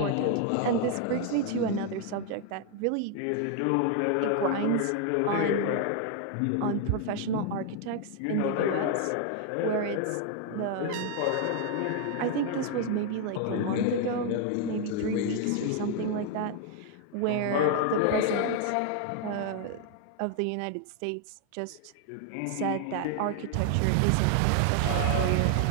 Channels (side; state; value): both; different; correlation 0.00